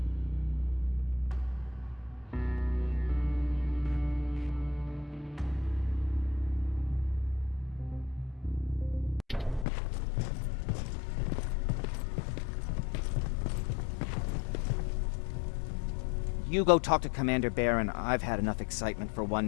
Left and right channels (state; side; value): drops out; right; at 9.7 s